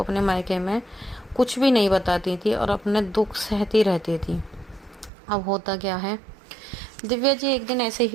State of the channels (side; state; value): left; drops out; at 5.1 s